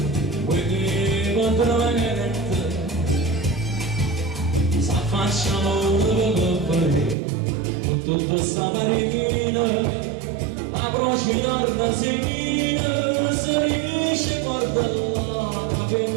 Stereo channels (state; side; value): drops out; left; at 7.2 s